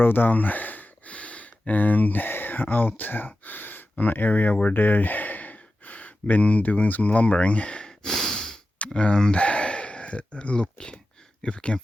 down and out on an area where they've been doing some lumbering, and look if we can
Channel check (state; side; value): normal; both; correlation 0.93